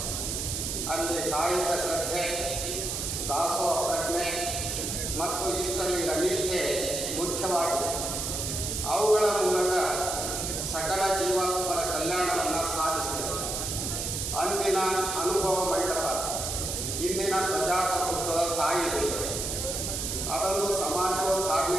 ಅಲ್ಲಿ ಕಾಯಿಕ ಶ್ರದ್ಧೆ, ದಾಸೋಹ ಪ್ರಜ್ಞೆ ಮತ್ತು ಇಷ್ಟಲಿಂಗ ನಿಷ್ಠೆ ಮುಖ್ಯವಾಗಿತ್ತು. ಅವುಗಳ ಮೂಲಕ ಸಕಲ ಜೀವಾತ್ಮರ ಕಲ್ಯಾಣವನ್ನು ಸಾಧಿಸಿದರು. ಅಂದಿನ ಅನುಭವ ಮಂಟಪ ಇಂದಿನ ಪ್ರಜಾಪ್ರಭುತ್ವದ ತಾಯಿ. ಅದೊಂದು ಸಮಾಜವು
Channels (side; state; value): right; noise; hiss, 2 dB below the sound